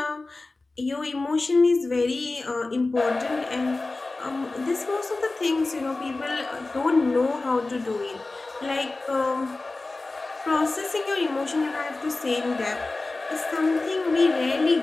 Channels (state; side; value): quieter; right; 3.3 dB